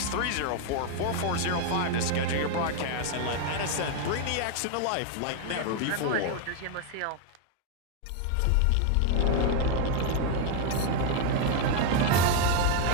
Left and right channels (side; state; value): both; different; correlation 0.00